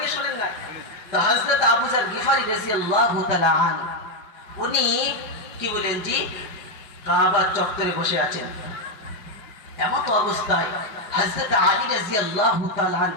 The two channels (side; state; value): right; late; 4.8 ms